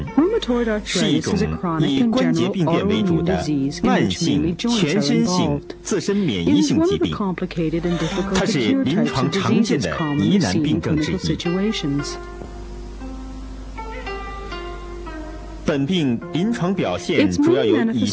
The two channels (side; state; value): both; identical; correlation 1.00